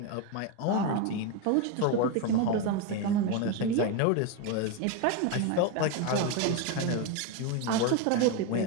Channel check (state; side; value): different; both; correlation 0.03